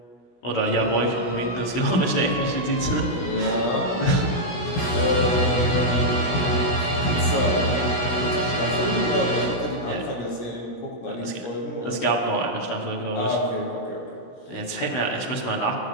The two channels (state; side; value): late; right; 17 ms